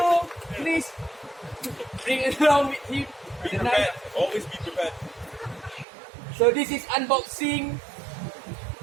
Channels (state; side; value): drops out; left; at 5.9 s